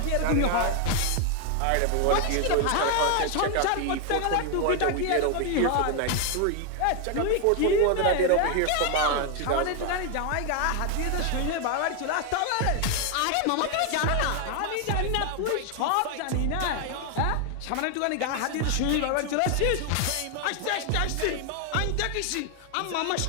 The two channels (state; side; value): different; both; correlation 0.01